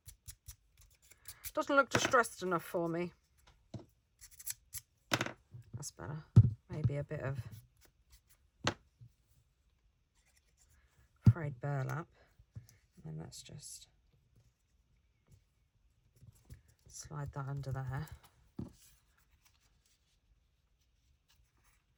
distressed enough for me. That's better. Maybe a bit of frayed burlap, and then let's just slide that under there.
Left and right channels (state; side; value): identical; both; correlation 1.00